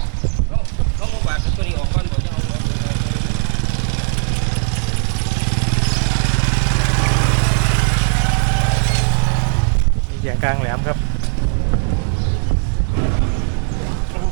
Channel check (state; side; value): silent; left; 58 dB below the other